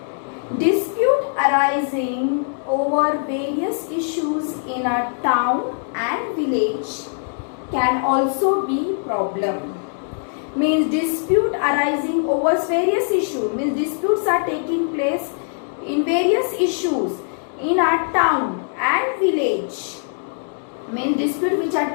Dispute arising over various issues in a town and village can also be problem. Means dispute arising over various issues, means disputes are taking place in various issues in our town and village. Means dispute which are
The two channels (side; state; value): right; silent; digital silence